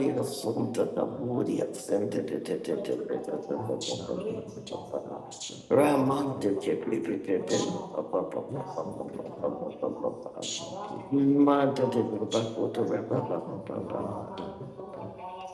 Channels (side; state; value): both; identical; correlation 1.00